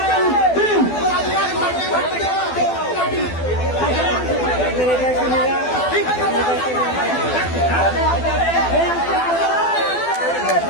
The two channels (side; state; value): right; late; 12 ms